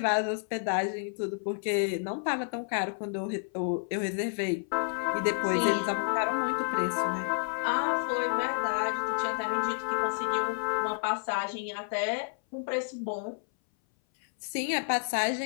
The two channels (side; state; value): right; silent; 58 dB below the other